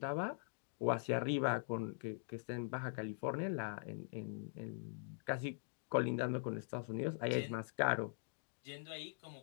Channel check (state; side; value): silent; right; digital silence